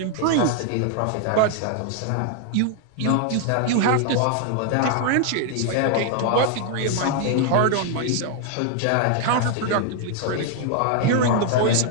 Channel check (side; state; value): both; different; correlation 0.00